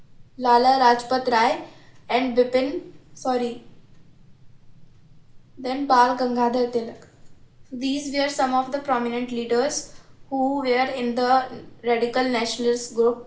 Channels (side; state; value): both; identical; correlation 1.00